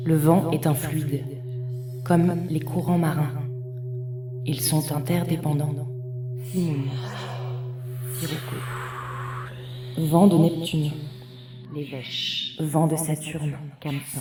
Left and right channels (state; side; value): identical; both; correlation 1.00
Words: Le vent est un fluide, comme les courants marins. Ils sont interdépendants. Simoun, Sirocco. Vent de Neptune, les Vèches. Vent de Saturne,